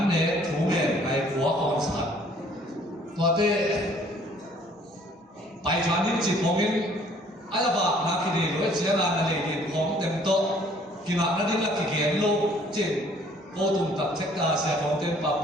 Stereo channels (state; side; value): normal; both; correlation 0.58